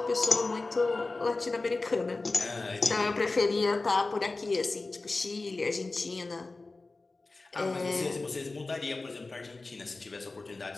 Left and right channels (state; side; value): quieter; right; 3.4 dB